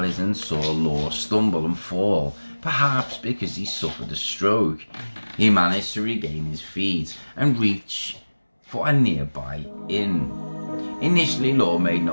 saw Law stumble and fall, Perhaps because he suffered a stroke, he managed to regain his feet and reach for a nearby inn. Initially, Law made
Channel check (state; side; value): inverted; both; correlation -1.00